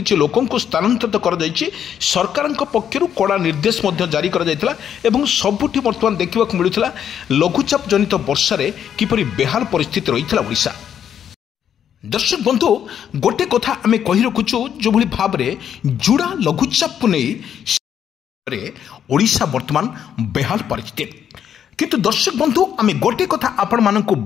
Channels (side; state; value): right; quieter; 9.1 dB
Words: लोकंकु स्थानांतरित कर जायछि सरकारक पक्षरु कड़ा निर्देश मध्ये जारी कर जायतिला एवं सबुठी बर्तमान देखिबा मिलुथिला लघुचाप जनित वर्षा रे किपरि बेहाल परिस्थिति रहिथिला ओडिशा। दर्शक बंधु गोटे कथा आमे कहि रखुछु जो भली भाव रे जुड़ा लघुचाप नै ओडिशा वर्तमान बेहाल परिस्थिति किंतु दर्शक बंधु आमे गोटे कथा आपण मानकु